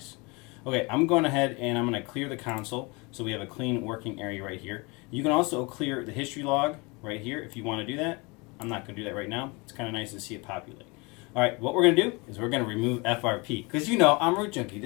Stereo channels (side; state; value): right; quieter; 27.7 dB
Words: Okay, I'm going ahead and I'm going to clear the console so we have a clean working area right here. You can also clear the history log right here if you want to do that. I'm not going to do that right now. It's kind of nice to see it populate. All right, what we're going to do is we're going to remove FRP. Because you know, I'm Root Junkie.